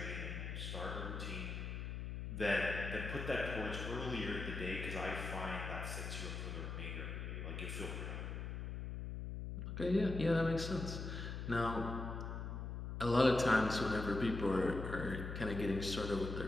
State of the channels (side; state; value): left; noise; hum, 5 dB below the sound